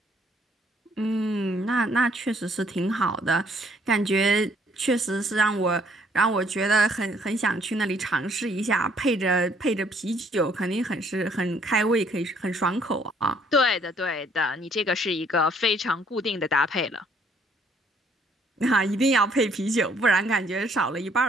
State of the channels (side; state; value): both; normal; correlation 0.64